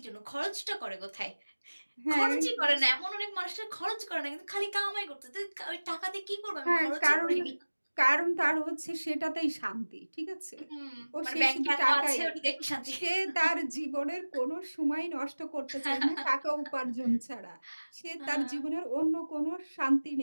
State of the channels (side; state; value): both; inverted; correlation -1.00